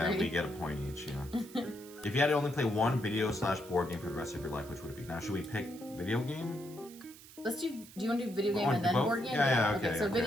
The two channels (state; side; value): noise; right; hiss, 19 dB below the sound